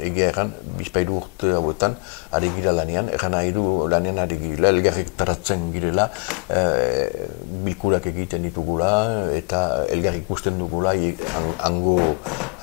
egia erran, bizpairu urte hauetan, ari gira lanean, erran nahi du lanean ari gira, elgarrik taratzen girela, bilkurak egiten ditugula, eta elgarrik ikusten dugula, hango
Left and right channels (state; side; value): quieter; right; 33.3 dB